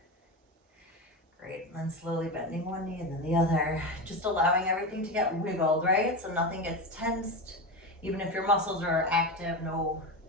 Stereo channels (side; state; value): both; normal; correlation 0.20